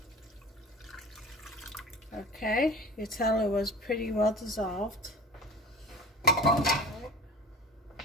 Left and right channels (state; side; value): normal; both; correlation 0.39